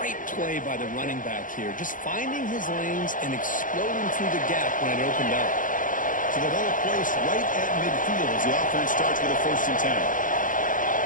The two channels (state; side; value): late; right; 0.38 ms